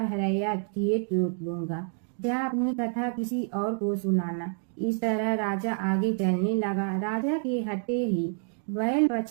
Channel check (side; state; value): left; silent; 59 dB below the other